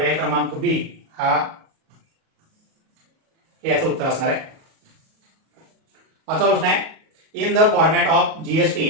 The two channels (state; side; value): late; left; 37 ms